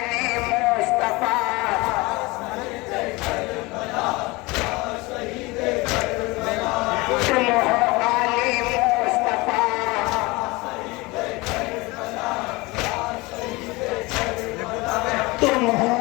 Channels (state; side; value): quieter; right; 23.4 dB